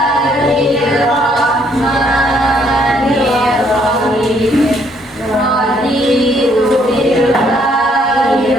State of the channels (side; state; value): both; normal; correlation 0.67